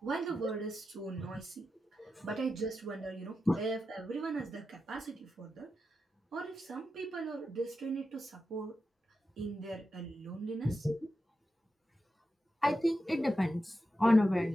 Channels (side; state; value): both; normal; correlation 0.89